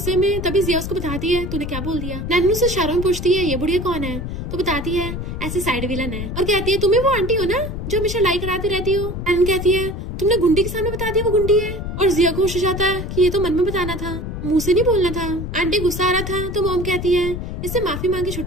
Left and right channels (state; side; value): noise; left; rumble, 5 dB below the sound